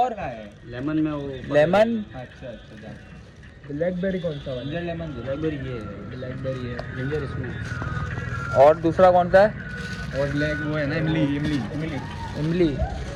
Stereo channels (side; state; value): both; identical; correlation 1.00